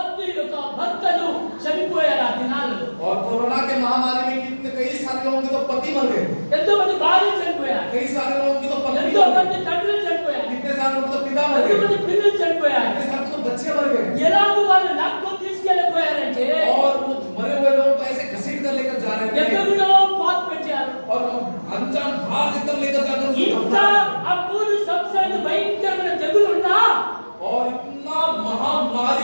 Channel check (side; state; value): both; inverted; correlation -1.00